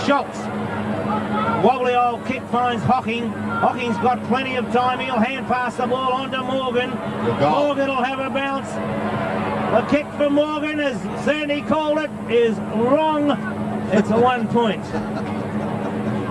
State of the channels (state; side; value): identical; both; correlation 1.00